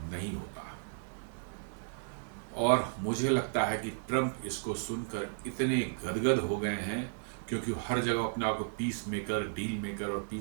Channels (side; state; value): left; silent; digital silence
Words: नहीं होता। और मुझे लगता है कि ट्रंप इसको सुनकर इतने गदगद हो गए हैं, क्योंकि हर जगह अपने आप को पीस मेकर, डील मेकर और